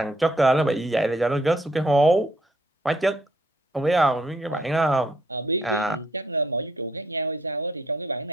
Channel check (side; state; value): both; normal; correlation 0.67